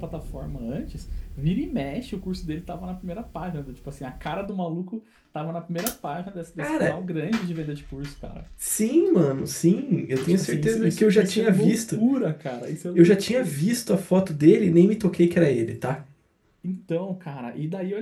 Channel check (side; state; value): both; identical; correlation 1.00